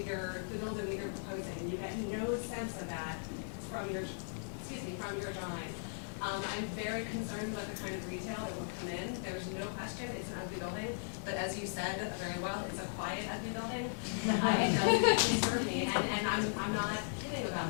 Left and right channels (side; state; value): right; silent; digital silence